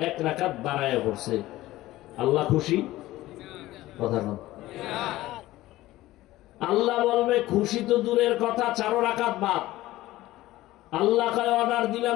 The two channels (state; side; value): quieter; right; 16.6 dB